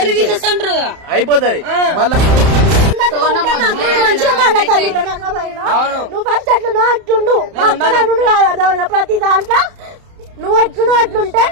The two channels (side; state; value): left; late; 31 ms